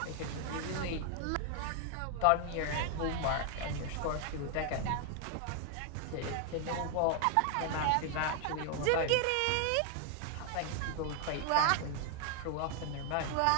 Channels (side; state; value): both; different; correlation 0.00